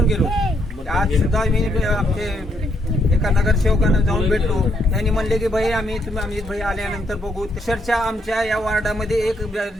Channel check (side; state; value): both; normal; correlation 0.74